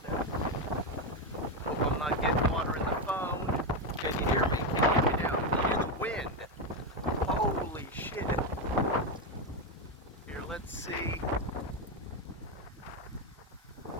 that. Hope I'm not getting water in the phone. Can you hear me? Can you hear me now? Can you hear the wind? Holy shit. Here, let's see.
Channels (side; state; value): both; normal; correlation 0.08